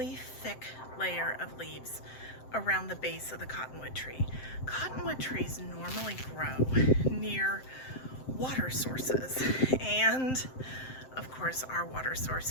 thick layer of leaves around the base of the cottonwood tree. Cottonwood trees normally grow near water sources, and of course our water source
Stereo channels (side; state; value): right; late; 7.7 ms